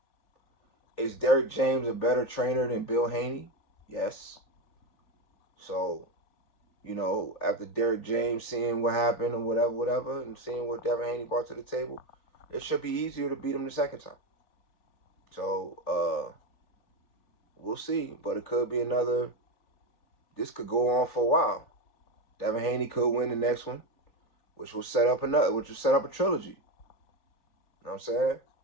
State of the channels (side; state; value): right; late; 3.4 ms